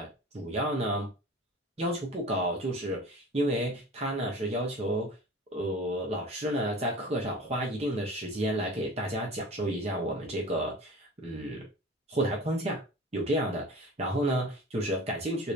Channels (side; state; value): both; normal; correlation 0.38